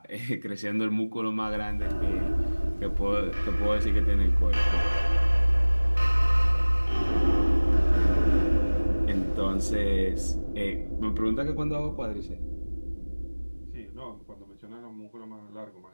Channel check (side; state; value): both; inverted; correlation -1.00